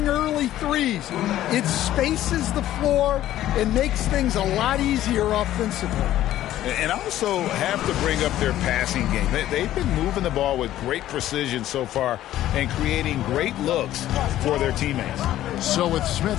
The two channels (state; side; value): quieter; right; 13.4 dB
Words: early threes, it spaces the floor and makes things a lot easier offensively. And also have to bring up their passing game. They've been moving the ball with great precision so far and creating great looks for their teammates. So with